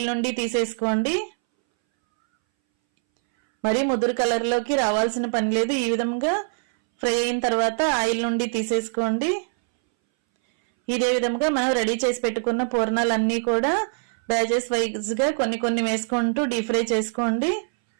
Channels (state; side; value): silent; left; 62 dB below the other